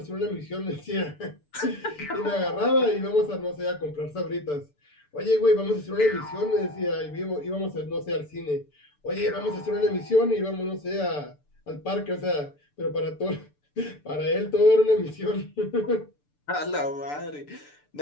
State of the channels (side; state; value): right; late; 6.8 ms